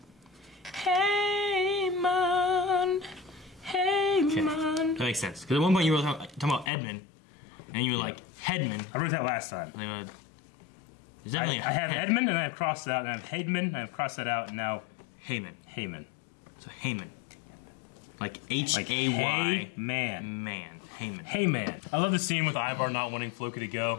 Haymund. Haymund. That makes sense. Because at one point you were talking about Edmund, and you were like Headman. I wrote that last time. There's definitely I have Edmund, and I have crossed that out, and I have Haidman, and I've crossed that out, and now Hayman. So Hayman. Like Hay-man. Man. Hayman. Hey man. I love the scene with Ivar not wanting Floki to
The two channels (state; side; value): drops out; right; at 6.7 s